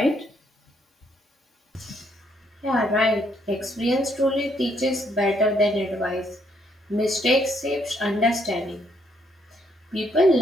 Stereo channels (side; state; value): both; normal; correlation 0.71